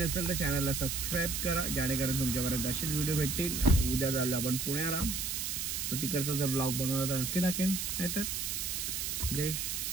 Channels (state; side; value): noise; right; hiss, 2 dB below the sound